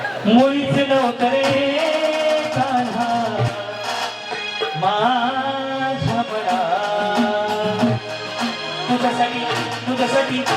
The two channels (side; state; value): both; identical; correlation 1.00